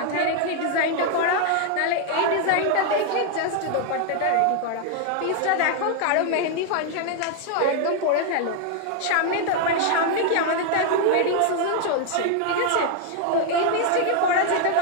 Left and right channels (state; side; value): different; both; correlation 0.00